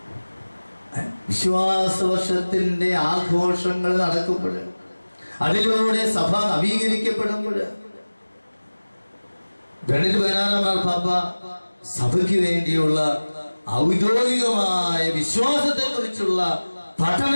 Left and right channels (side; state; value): both; inverted; correlation -1.00